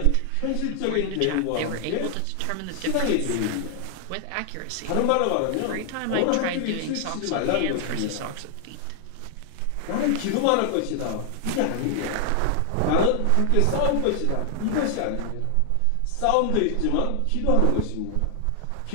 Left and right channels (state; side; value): different; both; correlation 0.00